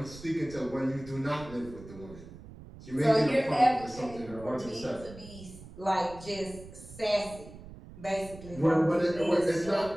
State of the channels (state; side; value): noise; right; rumble, 16 dB below the sound